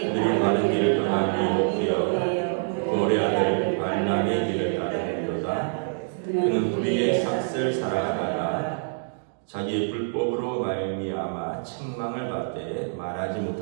바른 길을 떠나 유혹되어 고레 아들 발람의 길을 따르는도다. 그는 불의의 삭슬 살아가다가 자기의 불법으로 말미암아 책망을 받되 말하지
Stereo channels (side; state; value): left; silent; digital silence